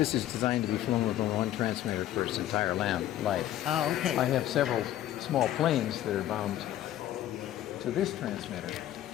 is designed to be flown with only one transmitter for its entire life. Oh, okay. I have several small planes that are bound to this transmitter.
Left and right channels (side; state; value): right; quieter; 12.9 dB